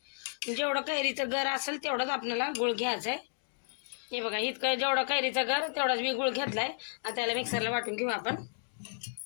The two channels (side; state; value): right; silent; digital silence